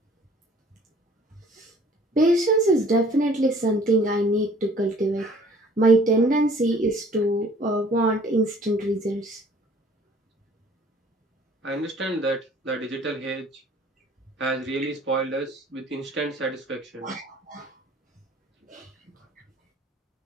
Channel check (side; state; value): both; normal; correlation 0.54